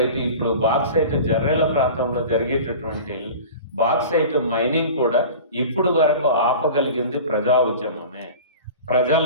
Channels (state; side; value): inverted; both; correlation -0.37